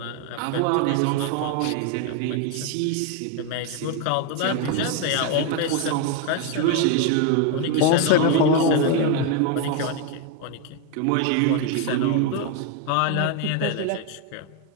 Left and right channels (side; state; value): both; different; correlation 0.01